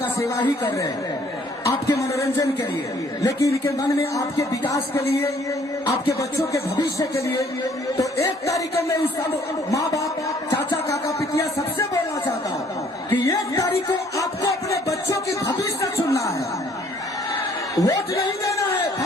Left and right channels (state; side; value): normal; both; correlation 0.61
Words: सेवा ही कर रहे हैं, आपके मनोरंजन के लिए, लेकिन इनके मन में आपके विकास के लिए, आपके बच्चों के भविष्य के लिए। तो 1 तारीख को मैं उस सब माँ बाप, चाचा, काका, पितिया सबसे बोलना चाहता हूँ कि 1 तारीख को आपको अपने बच्चों की भविष्य चुनना है। वोट नहीं देना है,